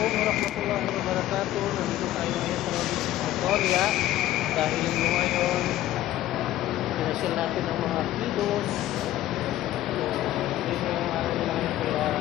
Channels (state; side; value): quieter; right; 14.1 dB